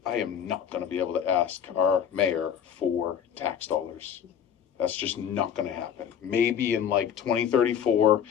I am not going to be able to ask our mayor for tax dollars. That's just not going to happen. Maybe in like 2034,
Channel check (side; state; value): right; quieter; 8.6 dB